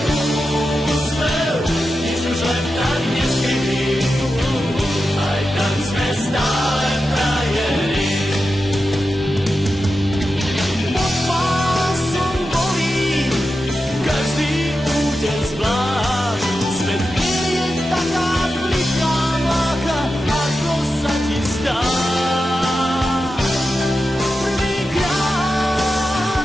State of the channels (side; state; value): both; normal; correlation 0.91